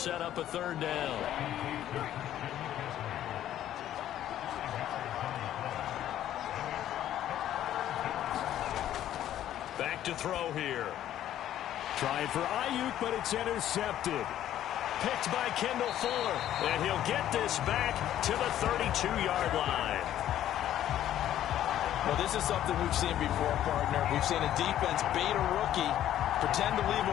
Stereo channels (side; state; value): right; quieter; 11.9 dB